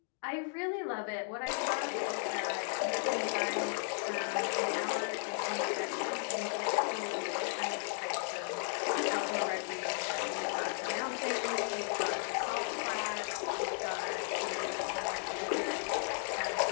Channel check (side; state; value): right; silent; 54 dB below the other